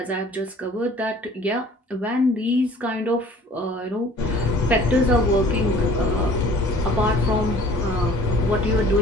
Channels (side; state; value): both; normal; correlation 0.51